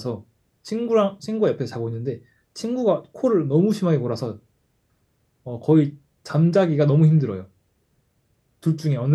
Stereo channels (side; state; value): both; identical; correlation 1.00